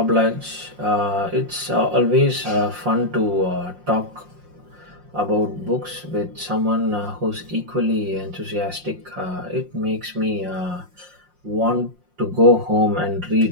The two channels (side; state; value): left; late; 5.6 ms